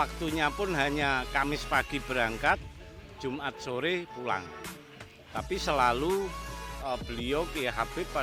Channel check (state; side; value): identical; both; correlation 1.00